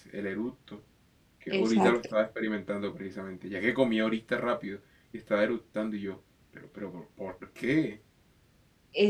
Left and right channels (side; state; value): both; identical; correlation 1.00